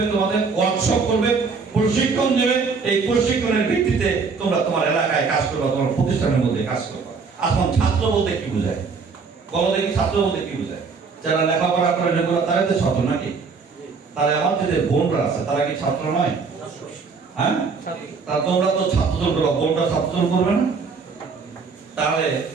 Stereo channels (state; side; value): quieter; left; 5.0 dB